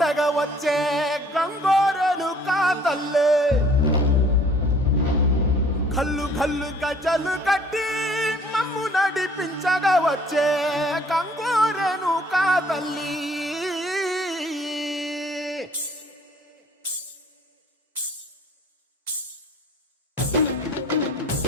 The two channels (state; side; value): normal; both; correlation 0.56